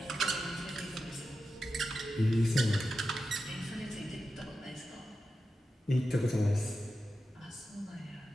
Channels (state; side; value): normal; both; correlation 0.91